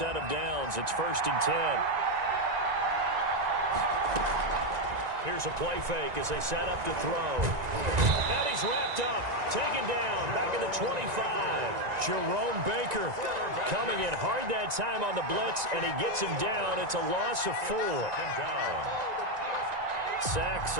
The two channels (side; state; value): left; late; 1.9 ms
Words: of downs. It's 1st and 10. Here's a play fake as they set up to throw. And he's wrapped up, taken down, back at the 25. Jerome Baker coming in hard that time on the blitz, and he gets him down. It's a loss of 4. Sacks,